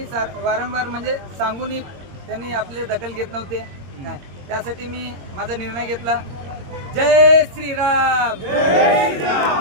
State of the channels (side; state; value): left; late; 22 ms